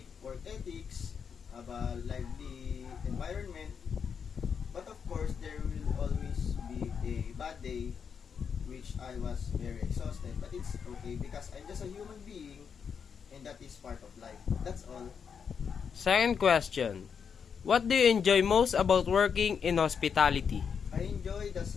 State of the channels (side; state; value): right; quieter; 6.7 dB